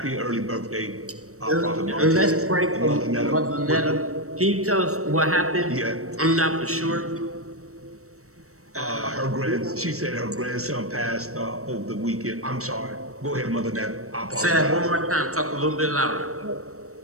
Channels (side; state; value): left; late; 0.64 ms